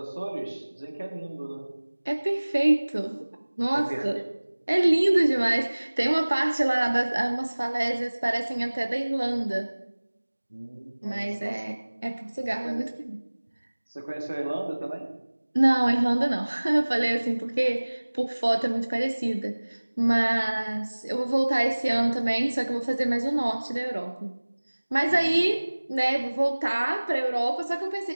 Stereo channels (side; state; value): both; inverted; correlation -1.00